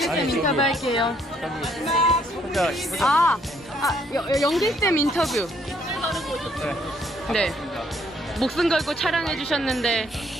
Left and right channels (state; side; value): normal; both; correlation 0.68